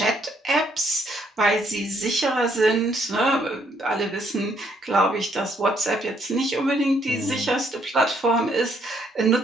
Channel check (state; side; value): normal; both; correlation 0.70